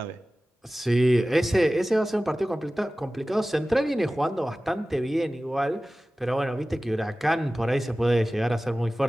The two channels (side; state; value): both; normal; correlation 0.97